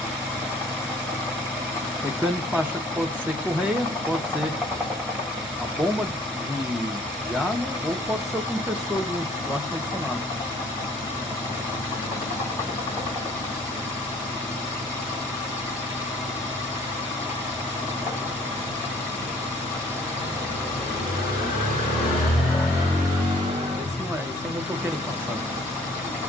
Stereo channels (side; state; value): both; normal; correlation 0.56